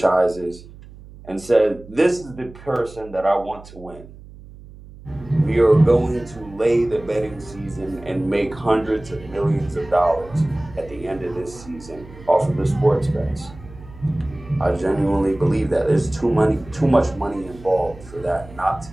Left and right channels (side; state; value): right; noise; hum, 19 dB below the sound